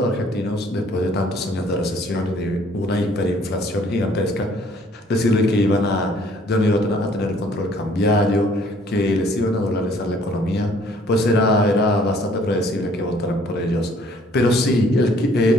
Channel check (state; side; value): normal; both; correlation 0.59